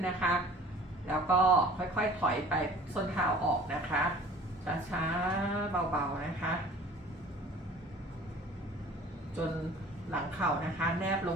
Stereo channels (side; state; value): both; normal; correlation 0.47